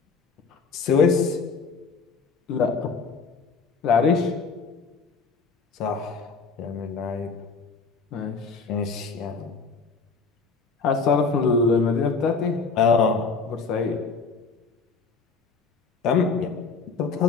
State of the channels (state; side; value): quieter; right; 4.8 dB